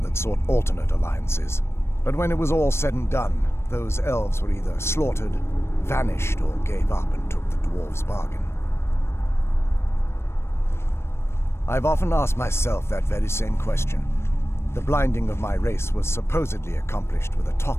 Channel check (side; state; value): right; late; 0.12 ms